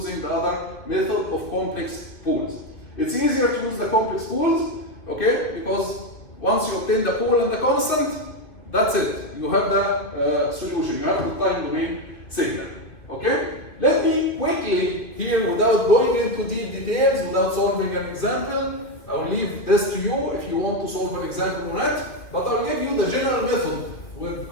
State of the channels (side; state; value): right; late; 2.8 ms